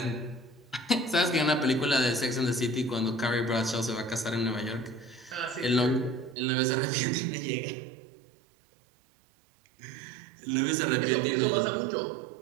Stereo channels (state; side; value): drops out; left; at 6.4 s